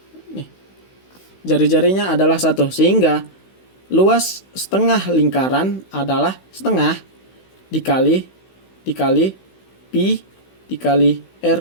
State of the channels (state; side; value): late; right; 16 ms